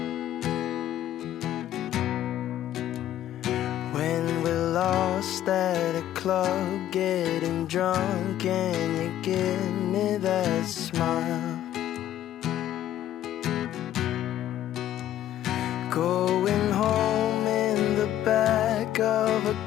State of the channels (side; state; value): right; quieter; 12.3 dB